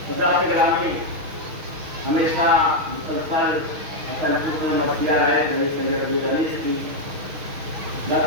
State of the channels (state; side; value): late; left; 6.3 ms